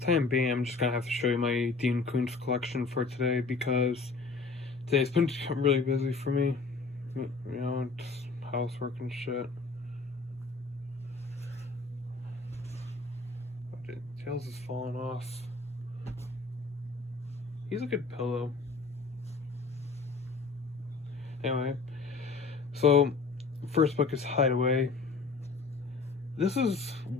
being, I'm just gonna have to show you my Dean Koontz collection for today because today's been really busy for me. It's housework and shit. Tails is falling off. He's a good pillow. Anyway, so first book is Hideaway. This is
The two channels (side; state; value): right; quieter; 4.2 dB